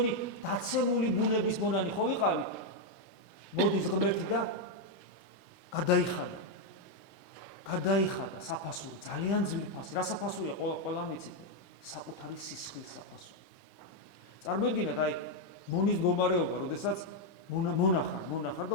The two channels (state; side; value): late; right; 23 ms